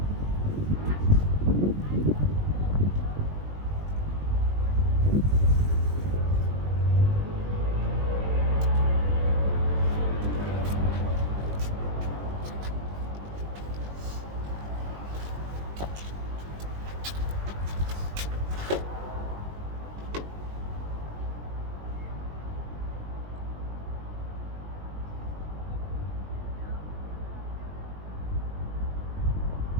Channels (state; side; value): late; left; 20 ms